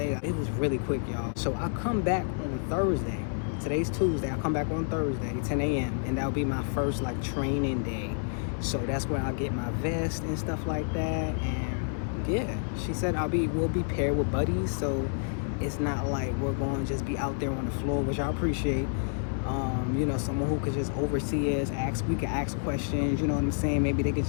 It was really quick, y'all. So I come back on Thursday. Today's Tuesday. I come back on Thursday, 10 a.m. and that'll be my first like training day. So that's where I'll get my vest and stuff like that. And yeah, she said we'll be paired with buddies, so it's not like we're going to just be out there on the floor, which I appreciate. You know, someone who could just oversee us, we could ask questions, you know what I'm saying? Maybe they could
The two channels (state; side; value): silent; right; digital silence